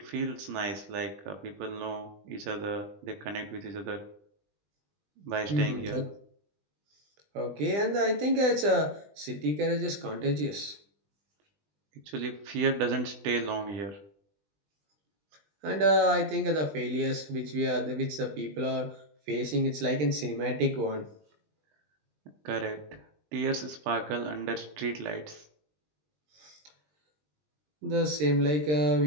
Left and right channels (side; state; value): left; late; 20 ms